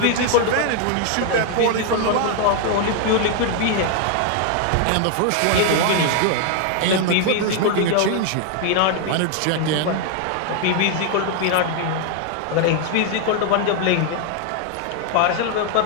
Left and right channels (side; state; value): both; different; correlation 0.00